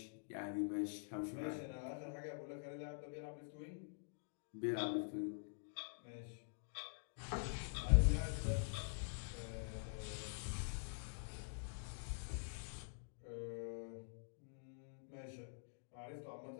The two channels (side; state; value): right; silent; digital silence